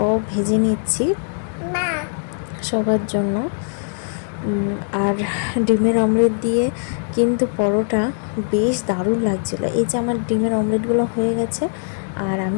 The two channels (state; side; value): silent; right; 65 dB below the other